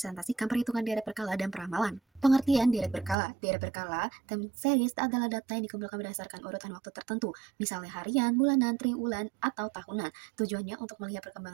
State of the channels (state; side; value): drops out; left; at 3.2 s